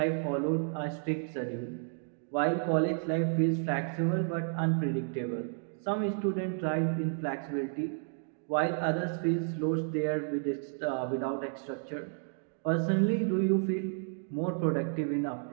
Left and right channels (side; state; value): left; silent; 57 dB below the other